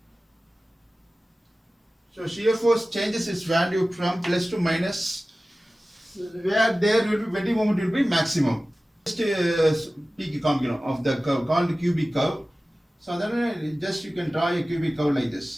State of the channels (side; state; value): both; normal; correlation 0.96